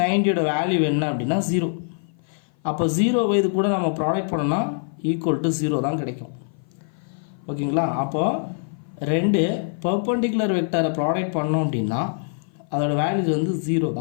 90யோட வேல்யூ என்ன அப்படின்னா 0. அப்போ 0 இது கூட நம்ம ப்ராடக்ட் பண்ணோம்னா ஈக்குவல் டு 0 தான் கிடைக்கும். ஓகேங்களா, அப்போது ரெண்டு பர்பெண்டிகுலர் வெக்டாரை ப்ராடக்ட் பண்ணோம் அப்படின்னா அதோட வேல்யூஸ் வந்து 0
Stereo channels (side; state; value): right; silent; 56 dB below the other